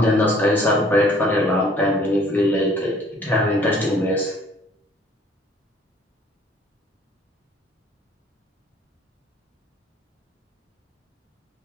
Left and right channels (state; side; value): normal; both; correlation 0.56